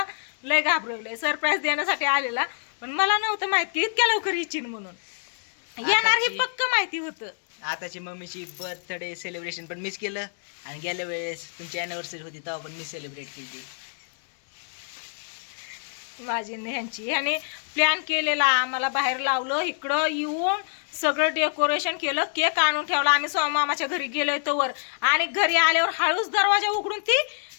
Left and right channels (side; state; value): right; silent; 61 dB below the other